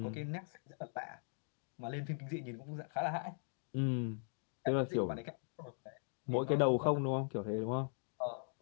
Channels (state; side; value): silent; right; digital silence